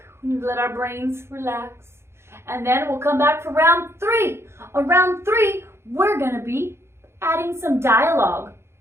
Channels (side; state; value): left; late; 0.12 ms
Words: We need to let our brains relax. And then we'll come back for round 3. On round 3, we're going to be adding some dialogue.